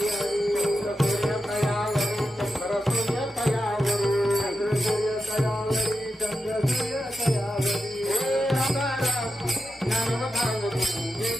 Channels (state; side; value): normal; both; correlation 0.90